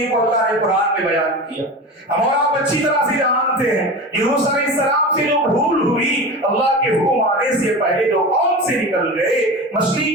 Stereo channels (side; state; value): both; normal; correlation 0.29